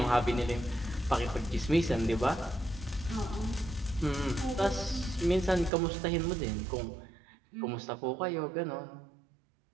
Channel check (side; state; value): left; drops out; at 5.7 s